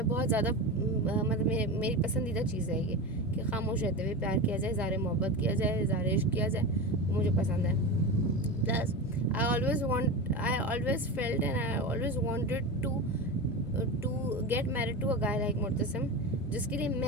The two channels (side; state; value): both; normal; correlation 0.23